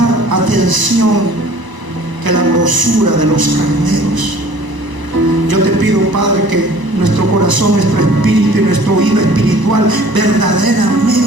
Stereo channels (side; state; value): left; late; 1.0 ms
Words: atención que la grosura de los carneros. Yo te pido, Padre, que nuestro corazón, nuestro espíritu y nuestro oído espiritual